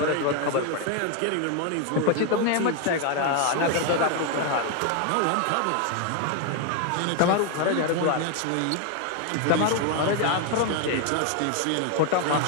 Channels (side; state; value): both; different; correlation 0.01